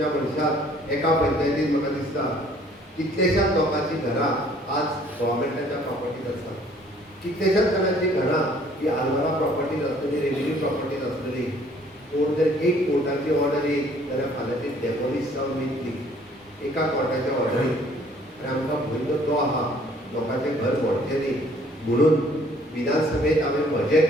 मनशाक एका पंचायतीन म्हाका दिसता कितलेशाच लोकांची घरां आज गव्हर्मेंटाच्या प्रॉपर्टीज आसा. कितलेशाच जाणांची घरां ही आलवारा प्रॉपर्टीज आसतली, रेव्हेन्यू प्रॉपर्टीज आसतली. कोण जर एक कोर्टाची ऑर्डर येयली जाल्यार फाल्यां ती डेमोलिश जावन वयतली एका कोर्टाच्या ऑर्डरीन. आनी आमकां भंय तो आहा लोकांचें घर मोडचें न्ही. म्हणून विधानसभेत हांवें म्हजें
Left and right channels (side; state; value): both; normal; correlation 0.58